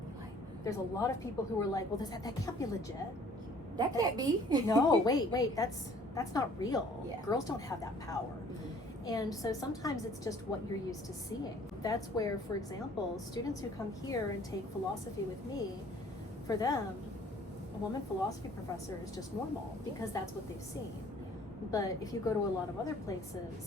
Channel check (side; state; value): both; normal; correlation 0.54